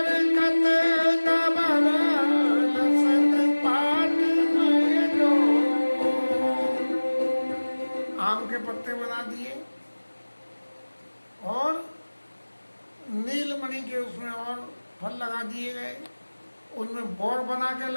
दबर लसत पाट में लो। आम के पत्ते बना दिए और नीलमणि के उसमें और फल लगा दिए गए, उनमें बोर बना के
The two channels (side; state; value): both; inverted; correlation -1.00